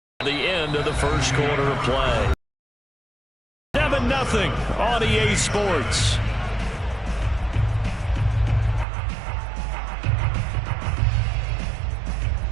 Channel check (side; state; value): left; drops out; at 8.8 s